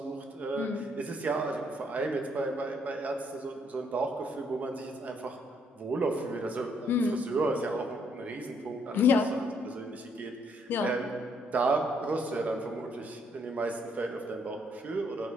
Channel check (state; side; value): normal; both; correlation 0.70